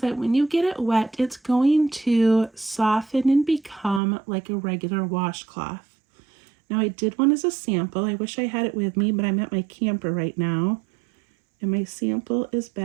that when you get it wet, it's going to soften and become like a regular washcloth. Now I did one as a sample. I wish I had it with me, but I'm at my camper right now, and my sample is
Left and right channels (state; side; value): drops out; left; at 4.0 s